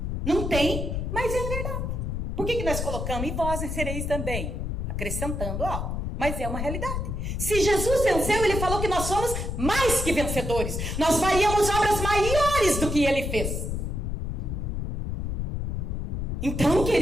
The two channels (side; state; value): left; noise; rumble, 2 dB below the sound